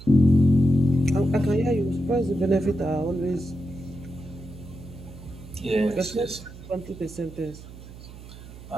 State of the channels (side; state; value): right; noise; hum, 16 dB below the sound